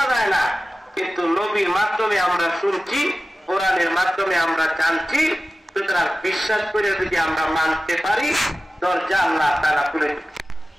যায় না কিন্তু নবীর মাধ্যমে আমরা শুনছি, কোরআনের মাধ্যমে আমরা জানছি। সুতরাং বিশ্বাস করে যদি আমরা মানতে পারি, দরজা আল্লাহ তাআলা খুলে দেন।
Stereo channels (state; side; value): normal; both; correlation 0.95